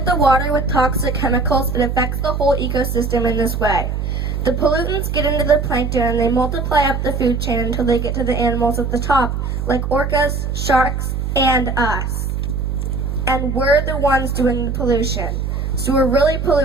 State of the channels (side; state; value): right; noise; hum, 2 dB below the sound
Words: the water with toxic chemicals, it affects the whole ecosystem in this way. The pollutants get into the plankton and they multiply up the food chain until they get to the animals at the top, like orcas, sharks, and us. And we're the ones doing the pollution. So we're really